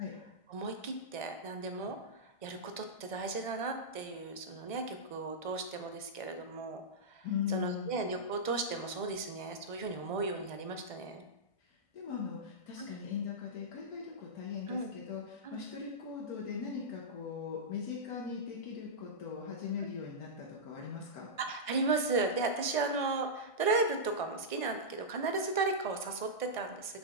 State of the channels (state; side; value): late; right; 1.5 ms